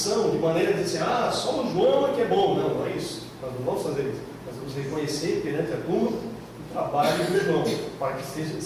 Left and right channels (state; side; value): identical; both; correlation 1.00